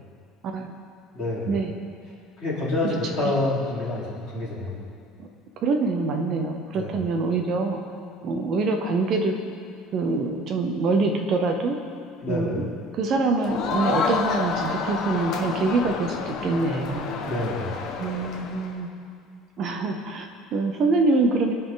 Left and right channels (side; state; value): both; normal; correlation 0.49